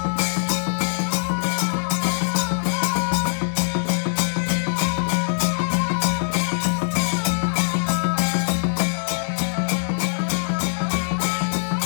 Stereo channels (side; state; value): right; silent; 64 dB below the other